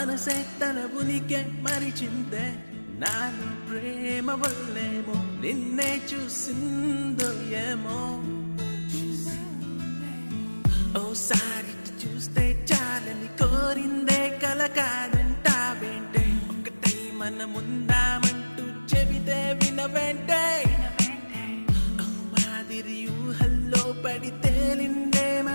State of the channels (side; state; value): both; inverted; correlation -1.00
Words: తన ఉనికి మరిచిందే నాలో ప్రేమ వల్లేమో నిన్నే చూసిందో ఏమో ఓసారి చూస్తే చాలని కోరిందే కల కాదంటావేంటే ఒకటై మనముందామంటూ చెబితే వినవేంటే మాదిరి ఊహల్లో పడి తేలిందే